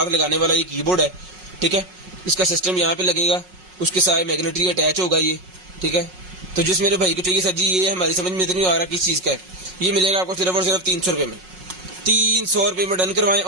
लगाने वाला ये कीबोर्ड है, ठीक है। इसका सिस्टम यहाँ पे लगेगा, उसके साथ मैग्नेटरी अटैच होगा ये, ठीक है। तो जिस मेरे भाई को चाहिए सर जी, ये हमारी समझ में तो नहीं आ रहा किस चीज़ का है। ये मिलेगा आपको सिर्फ और सिर्फ 300 रुपये में। 300 रुपये में डन करवाएं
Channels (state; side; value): late; left; 5.5 ms